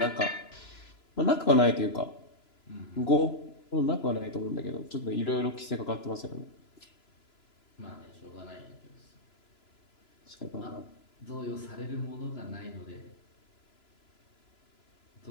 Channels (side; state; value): right; late; 3.0 ms